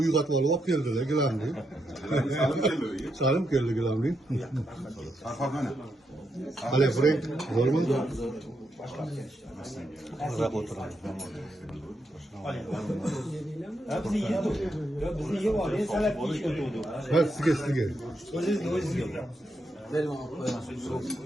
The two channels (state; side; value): normal; both; correlation 0.82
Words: uyg'otib olib keldilar gilamni. Salim keldi gilamni. Farqat mana. Hali Frank bormi? Maza o'tiramiz. Bizni yeydi. Bizni yeb olib, salat yeyish o'tdi. Ha, sizga. O'zingizga.